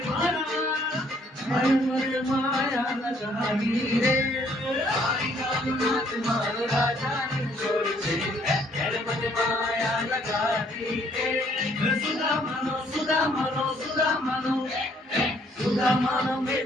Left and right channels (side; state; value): both; normal; correlation 0.65